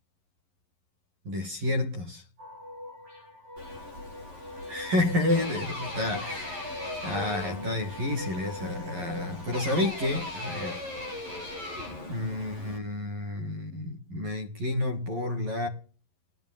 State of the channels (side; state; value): left; late; 11 ms